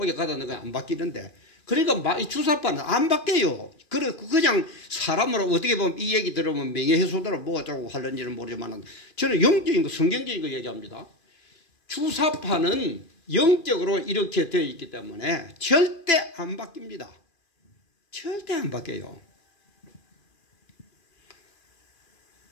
가다 넣으면 안 바뀌는데, 그러니까 이 주사파는 안 바뀌어요. 그냥 사람으로 어떻게 보면 이 얘기 들으면 명예훼손으로 뭐 어쩌고 하는지는 모르지만 저는 영적인 거, 성경적인 거 얘기합니다. 주사파는 영적으로 이렇게 되어 있기 때문에 절대 안 바뀝니다. 절대 안 바뀌어요.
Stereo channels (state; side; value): late; right; 2.4 ms